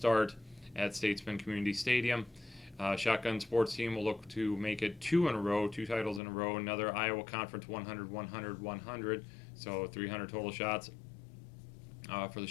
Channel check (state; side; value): drops out; right; at 6.2 s